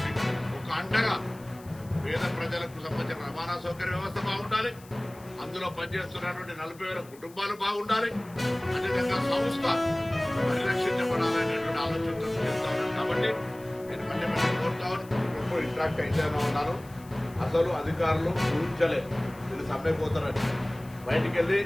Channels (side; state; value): left; noise; hiss, 24 dB below the sound